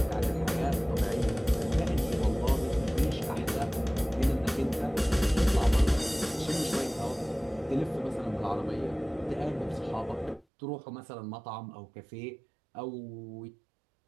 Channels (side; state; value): left; drops out; at 10.5 s